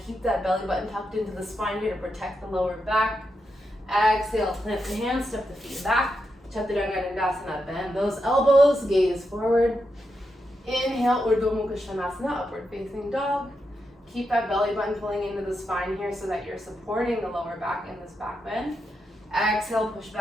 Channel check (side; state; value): both; normal; correlation 0.85